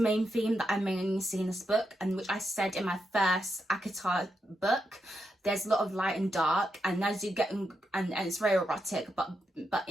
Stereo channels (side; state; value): both; normal; correlation 0.84